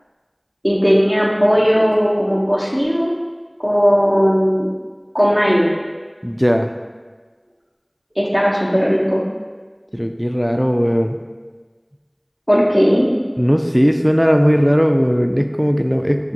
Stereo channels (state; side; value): identical; both; correlation 1.00